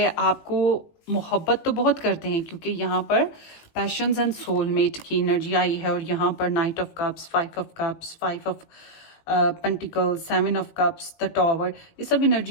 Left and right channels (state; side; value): late; right; 19 ms